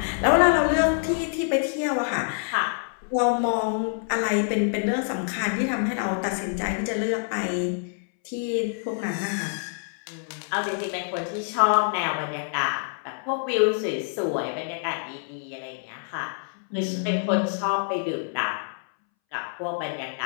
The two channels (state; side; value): silent; right; 61 dB below the other